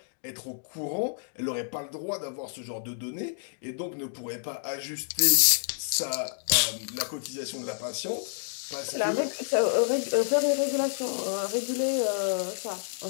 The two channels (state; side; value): silent; right; digital silence